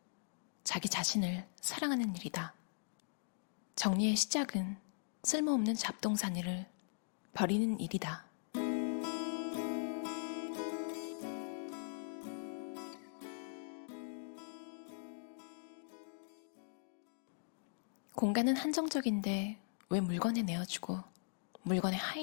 자기 자신을 사랑하는 일이다. 정리의 시작은 쓸모없는 잡동사니를 버리는 일이다. 공간은 한정적인데 왜 물건에 내어주고 물건의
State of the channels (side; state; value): right; silent; digital silence